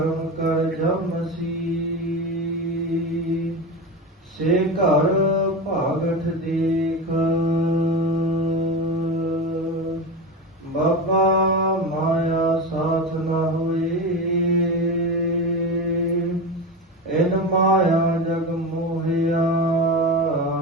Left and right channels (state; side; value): normal; both; correlation 0.22